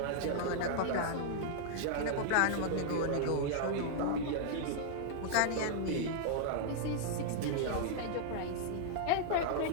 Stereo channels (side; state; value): both; different; correlation -0.01